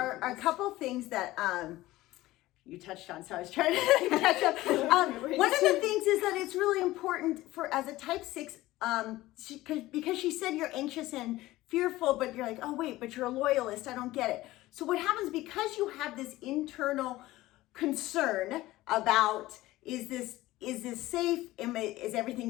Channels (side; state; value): right; quieter; 17.3 dB